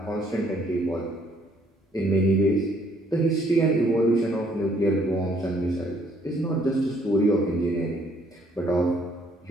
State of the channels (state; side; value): normal; both; correlation 0.65